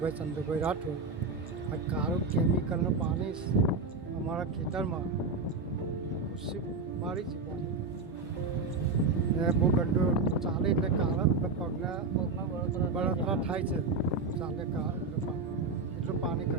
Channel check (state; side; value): quieter; left; 3.8 dB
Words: ચંદ્રભાઈ રાઠોડ. આ કાળું કેમિકલનું પાણી અમારા ખેતરમાં ખુશી મારી છે પાણી. ને બહુ ગંદુ ચાલે એટલે કાળા પગના બળતરા થાય છે. ચાલે એટલું પાણી